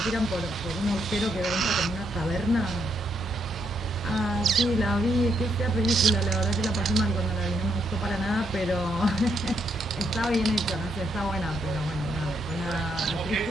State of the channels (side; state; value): both; normal; correlation 0.77